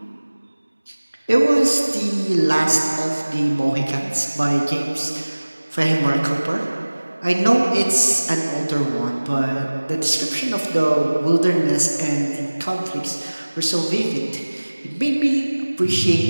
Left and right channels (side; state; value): both; inverted; correlation -1.00